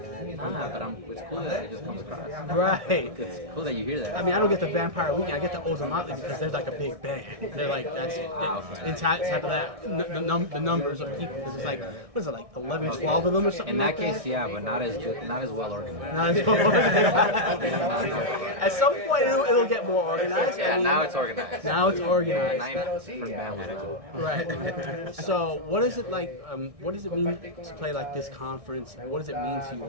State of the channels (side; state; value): left; late; 1.6 ms